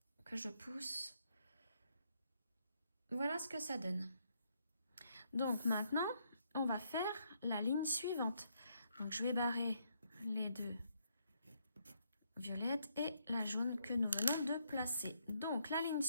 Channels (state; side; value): inverted; both; correlation -0.74